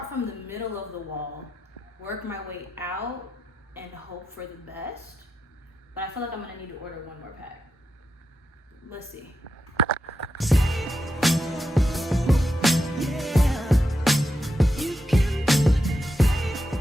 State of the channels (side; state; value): both; normal; correlation 0.87